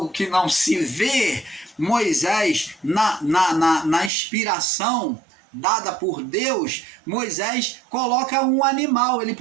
que não se vê. Moisés, na inspiração dada por Deus, Moisés coloca um animal. Ele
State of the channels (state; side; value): drops out; left; at 4.1 s